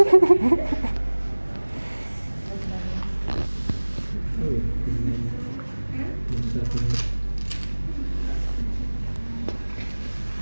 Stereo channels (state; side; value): inverted; both; correlation -1.00